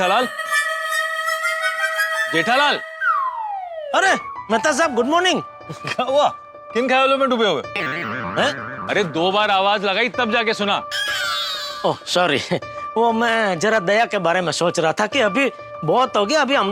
जेठालाल, अरे मेहता साहब, गुड मॉर्निंग। क्या हुआ? किन ख्यालों में डूबे हुए हैं? अरे 2 बार आवाज लगाई तब जाके सुना। ओह सॉरी, वो मैं जरा दया के बारे में सोच रहा था कि अभी बहुत हो गया, अभी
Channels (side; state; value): both; identical; correlation 1.00